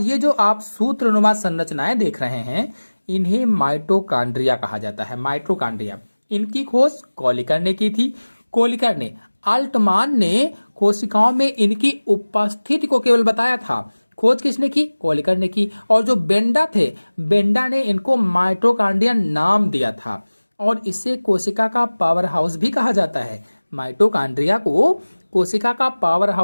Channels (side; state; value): both; inverted; correlation -1.00